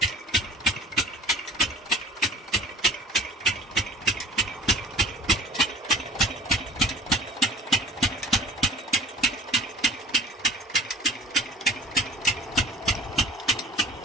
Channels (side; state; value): both; normal; correlation 0.45